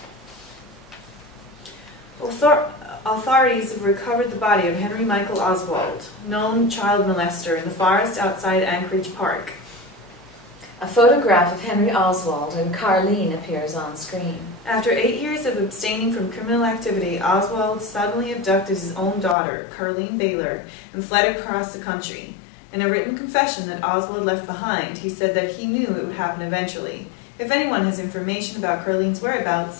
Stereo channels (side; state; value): right; drops out; at 19.4 s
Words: Authorities have recovered the body of Henry Michael Oswald, known child molester, in the forest outside Anchorage Park. A photograph of Henry Oswald and Carlene appears on screen. After 8 years of abstaining from criminal activity, Oswald suddenly abducted his own daughter, Carlene Baylor, and fled across the country. In a written confession that Oswald left behind, he said that he knew it would happen eventually. If anyone has information about Carlene's